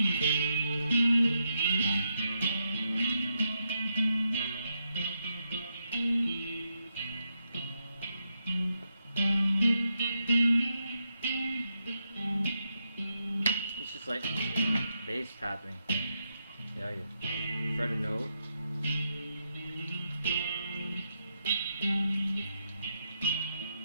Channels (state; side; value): inverted; both; correlation -0.82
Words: It's just like bass tapping. Yeah, you fret a note.